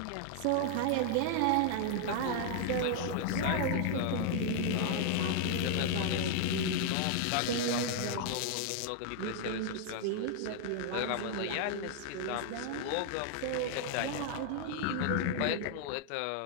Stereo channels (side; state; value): both; different; correlation 0.00